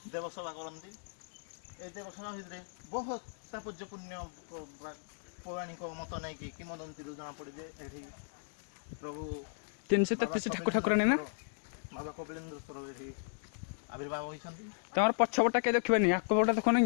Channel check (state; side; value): silent; right; digital silence